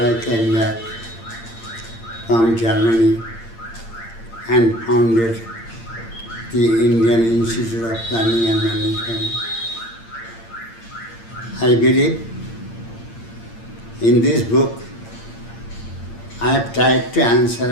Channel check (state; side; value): late; right; 8.8 ms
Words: came back from Germany and founded the Indian Institute of Planning and Management. I believe in this book I have tried to